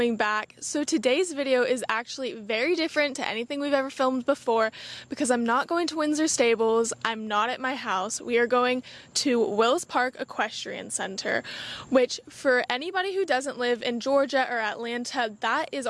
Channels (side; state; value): both; identical; correlation 1.00